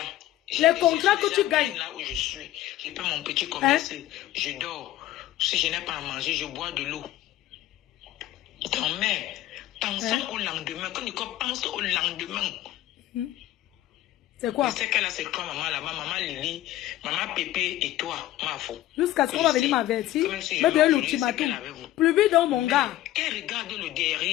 Les contrats que tu gagnes. Là où je suis, je fais mon petit commerce, je dors. Si je n'ai pas à manger, je bois de l'eau. Ton mère, pensons au lendemain. Quand Nicole pense au lendemain. C'est quoi? Je sais qu'elle a c'est quoi maman là-bas, maman Lily, maman Pépé et toi, ma faux. Jusqu'à ce qu'on va venir m'avertir. Me donner l'ultimatum. Publie dans mon gars. Qu'elle regarde le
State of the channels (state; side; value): quieter; right; 14.7 dB